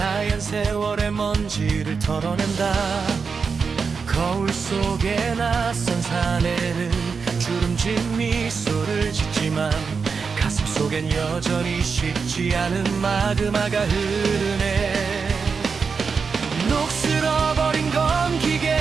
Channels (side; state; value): left; quieter; 5.4 dB